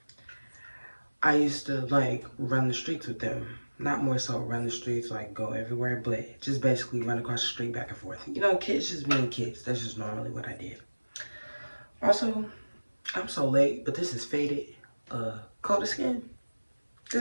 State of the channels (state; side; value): inverted; both; correlation -1.00